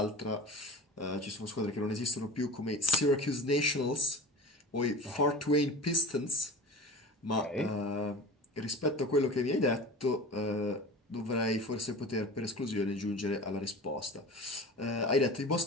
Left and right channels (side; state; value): both; normal; correlation 0.35